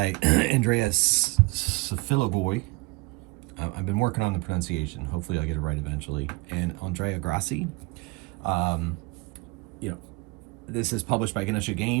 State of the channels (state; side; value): quieter; left; 25.0 dB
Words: Andreas Safilogoi. I've been working on the pronunciation. Hopefully I'll get it right eventually. And Andrea Grassi. This is published by Ganesha